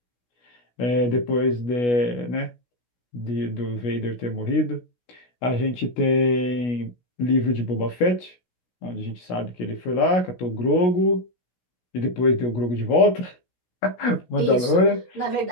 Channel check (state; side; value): late; right; 16 ms